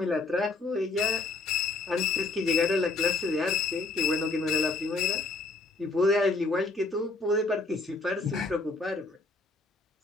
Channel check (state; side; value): quieter; right; 3.5 dB